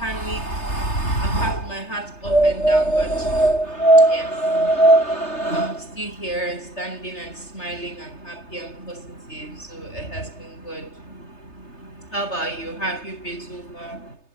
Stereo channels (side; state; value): right; late; 3.3 ms